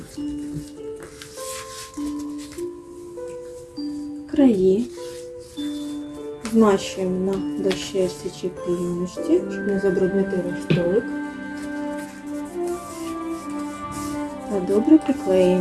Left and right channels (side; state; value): both; identical; correlation 1.00